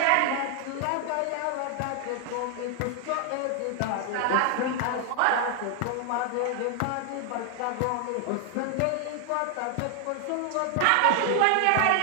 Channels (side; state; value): both; different; correlation 0.00